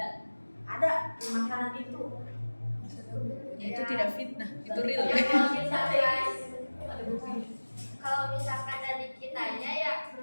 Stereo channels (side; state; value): both; inverted; correlation -1.00